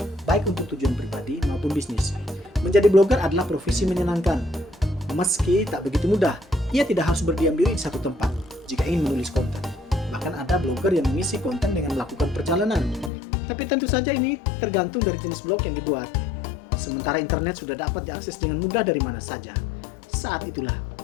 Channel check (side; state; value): right; drops out; at 13.1 s